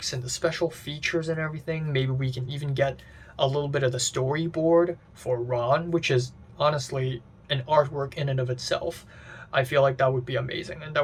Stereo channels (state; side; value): identical; both; correlation 1.00